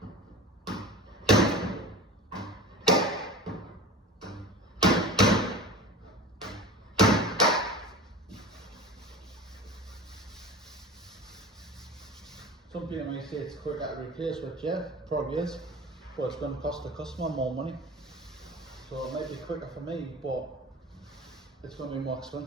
Some people might say it's quicker to replace, which yeah, probably is, but it's going to cost the customer more money. So it might be quicker for me, but it's going to be more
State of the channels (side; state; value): both; normal; correlation 0.34